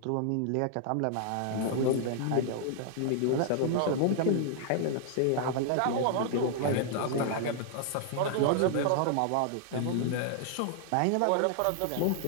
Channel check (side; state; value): both; different; correlation 0.00